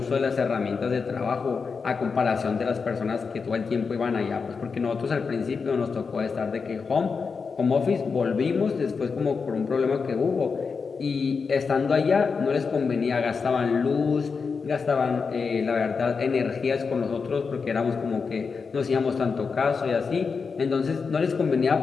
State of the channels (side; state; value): right; quieter; 5.2 dB